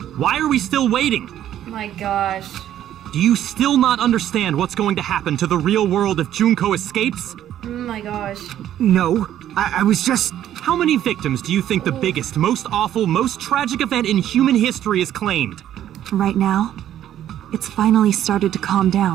Why are we still waiting? My gosh. Do you still not understand what's going to happen to the real world if Junko escapes? Oh my gosh. No, I was just... How many victims do you think the biggest, most awful, most tragic event in human history has claimed? Right now, it's finally started to calm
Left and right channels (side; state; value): left; quieter; 11.5 dB